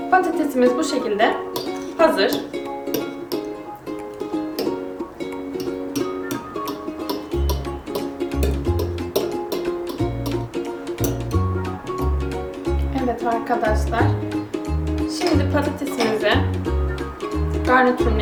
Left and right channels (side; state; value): both; identical; correlation 1.00